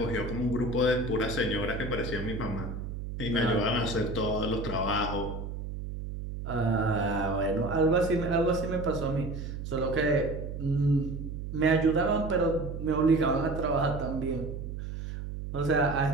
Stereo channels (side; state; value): right; noise; hum, 7 dB below the sound